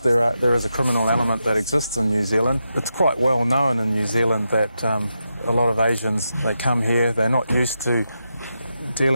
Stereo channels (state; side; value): inverted; both; correlation -0.87